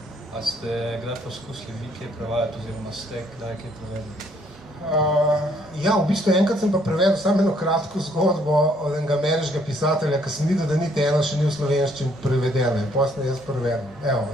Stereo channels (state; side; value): normal; both; correlation 0.66